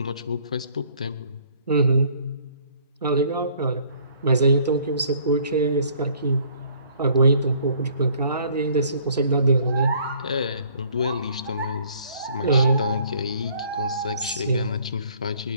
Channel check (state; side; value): inverted; both; correlation -0.59